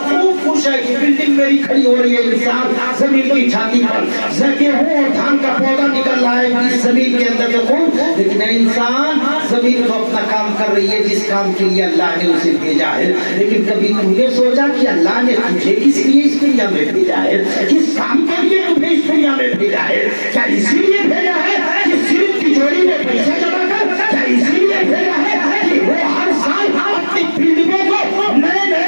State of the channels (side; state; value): both; inverted; correlation -1.00